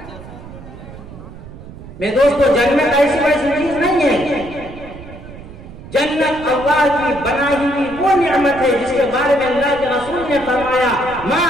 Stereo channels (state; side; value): noise; right; rumble, 15 dB below the sound